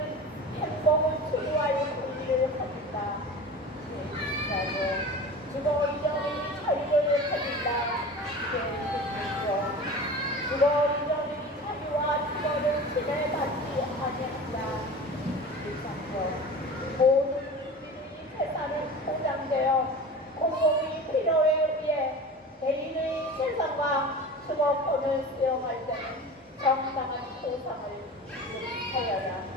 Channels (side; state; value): both; normal; correlation 0.34